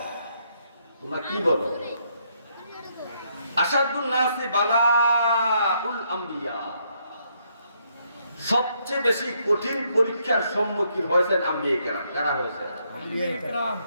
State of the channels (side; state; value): both; inverted; correlation -0.73